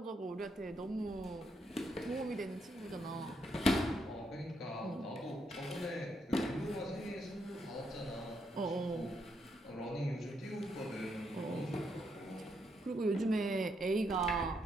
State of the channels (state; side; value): normal; both; correlation 0.77